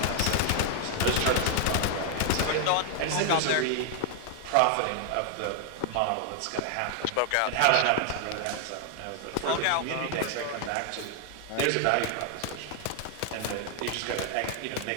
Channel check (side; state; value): both; different; correlation 0.00